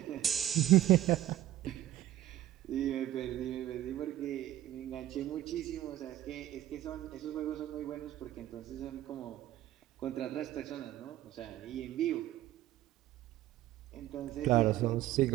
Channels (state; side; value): quieter; left; 13.6 dB